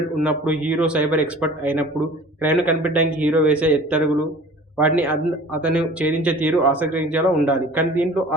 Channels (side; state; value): both; normal; correlation 0.45